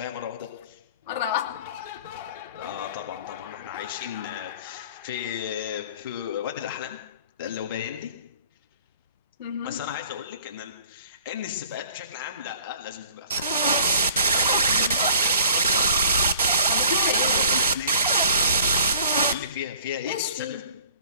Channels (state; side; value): inverted; both; correlation -0.52